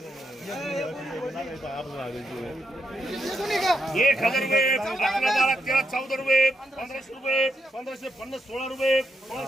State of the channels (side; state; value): both; normal; correlation 0.82